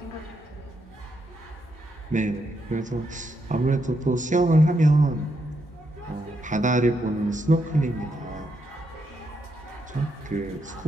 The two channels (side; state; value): both; normal; correlation 0.80